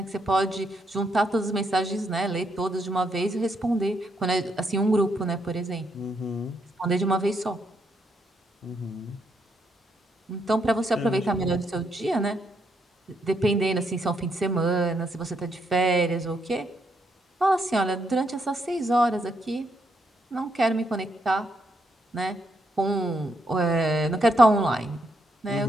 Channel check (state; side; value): normal; both; correlation 0.77